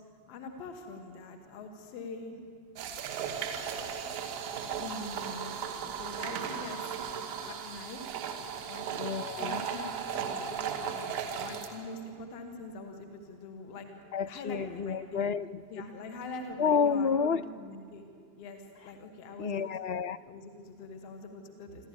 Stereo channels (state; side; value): late; right; 2.9 ms